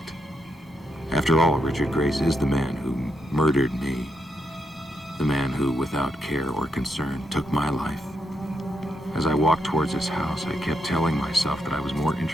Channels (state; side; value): normal; both; correlation 0.80